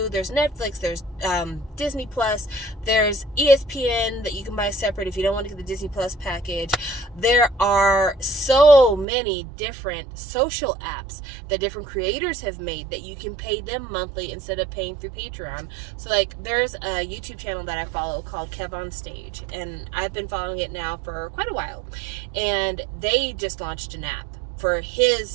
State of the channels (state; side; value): drops out; left; at 9.1 s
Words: there's Netflix, there's Disney Plus, there's ESPN that you can buy separate if you don't want to get the Disney Plus package. There are so many different social apps that different creators have made that you can pay them monthly instead of paying through Patreon. So, like, there's a YouTube channel that I follow called Kev on Stage, and I've been following it now for quite a while. And they just launched an app for